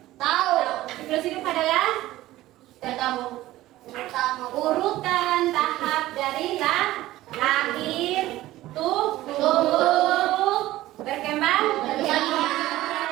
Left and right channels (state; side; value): quieter; left; 16.0 dB